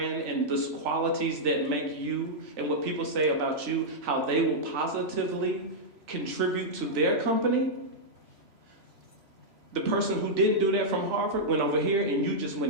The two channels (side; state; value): left; late; 3.0 ms